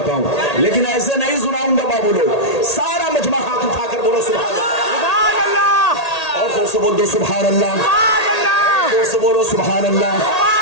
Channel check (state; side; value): late; right; 1.8 ms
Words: हूं, लेकिन ऐसे नहीं सुनाऊंगा बाबू लोग। सारा मजमा हाथ उठाकर बोलो सुभान अल्लाह, और जोर से बोल दो सुभान अल्लाह, जोर से बोलो सुभान अल्लाह।